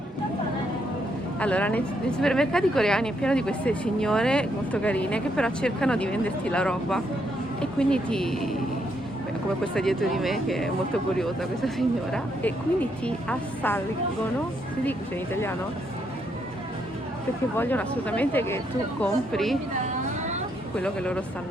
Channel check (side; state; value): both; normal; correlation 0.76